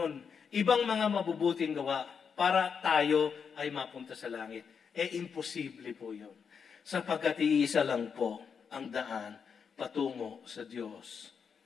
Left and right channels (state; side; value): quieter; right; 6.4 dB